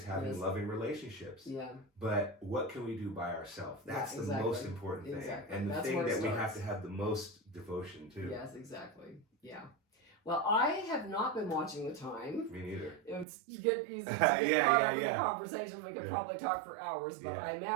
having loving relationships. Yeah. But what can we do by ourselves? That's the most important thing. Exactly. And the thing that we have to have the most devotion to. Yes, exactly. Yeah. Well, I have not been watching the time. Me neither. It's get easy to get caught up in the conversation. We could probably talk for hours, but I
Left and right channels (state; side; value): drops out; left; at 13.2 s